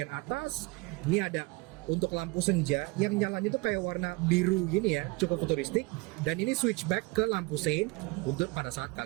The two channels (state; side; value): quieter; left; 25.7 dB